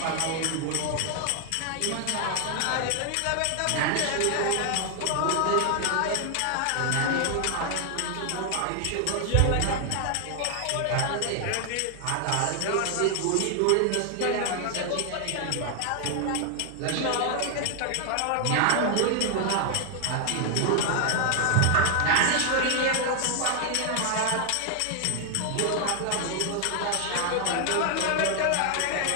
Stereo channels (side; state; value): both; different; correlation 0.00